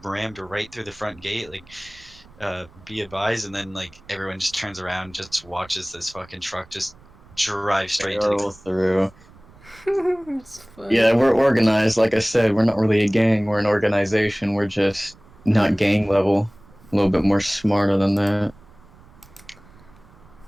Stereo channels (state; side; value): noise; right; rumble, 25 dB below the sound